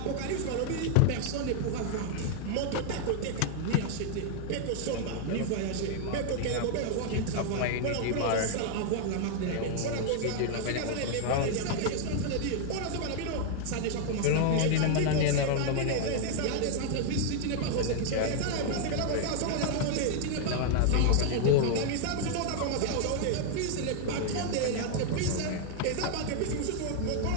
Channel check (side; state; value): both; different; correlation 0.00